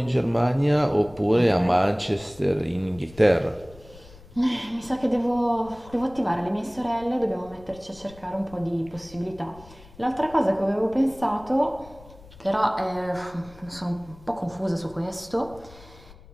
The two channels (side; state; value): left; noise; rumble, 21 dB below the sound